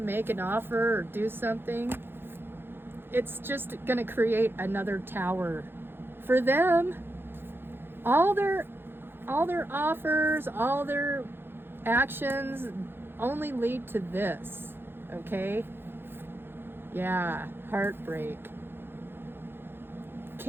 an offer or do something, it's just going to create another tower. For them, all their offers, all their actions only lead to this, okay? Yeah, heartbreak.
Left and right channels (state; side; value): late; left; 0.10 ms